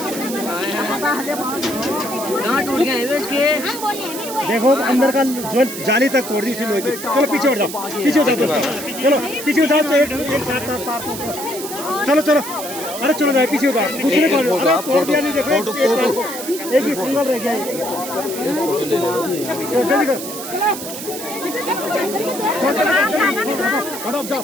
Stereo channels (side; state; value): right; noise; hiss, 9 dB below the sound